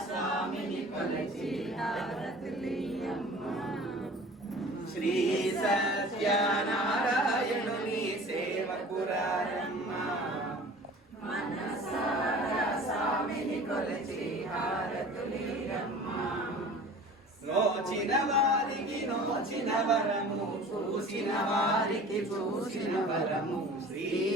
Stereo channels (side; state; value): both; normal; correlation 0.43